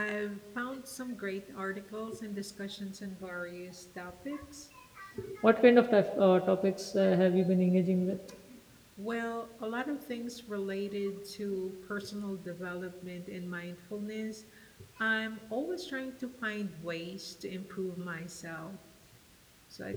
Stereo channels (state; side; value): identical; both; correlation 1.00